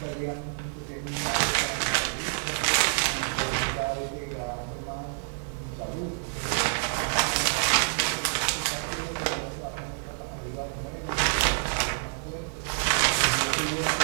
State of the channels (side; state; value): left; silent; digital silence